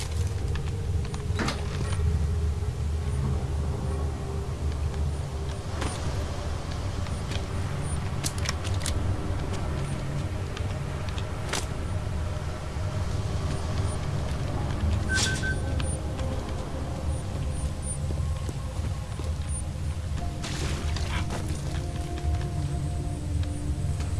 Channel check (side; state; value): both; identical; correlation 1.00